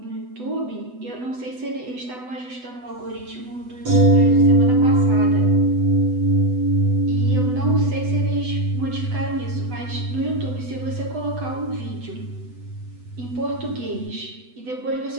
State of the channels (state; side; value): late; left; 8.0 ms